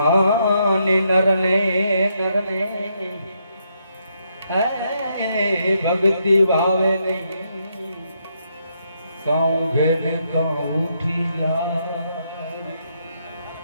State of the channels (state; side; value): inverted; both; correlation -0.77